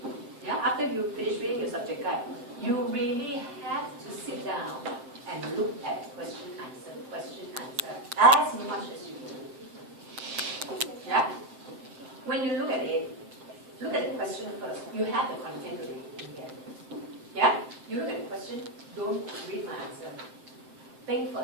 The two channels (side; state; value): left; late; 7.7 ms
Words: yeah, after you finish reading your subject guide, you really have to sit down and look at question, answer, as much as you can. Yeah? When you look at it, look at the question first. You have the content already in here. Yeah? You look at the question, don't read my answer. Think